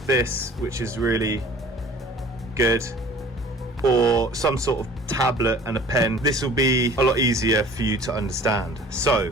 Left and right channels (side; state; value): both; normal; correlation 0.48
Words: this, which is really good, or some sort of tablet and a pen. This will be a lot easier for you to understand.